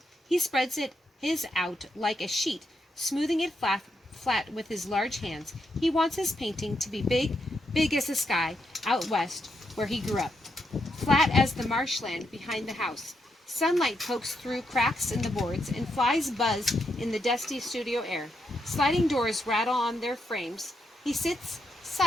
He spreads his out like a sheet, smoothing it flat with his large hands. He wants his painting to be big as the sky out west where he grew up, flat as the marshland behind the house. Sunlight pokes through cracks in the boards, and flies buzz in the dusty studio air. Sliding doors rattle on their frames. He sits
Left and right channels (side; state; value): both; normal; correlation 0.81